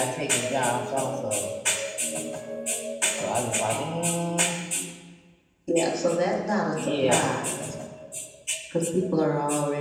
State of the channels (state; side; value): identical; both; correlation 1.00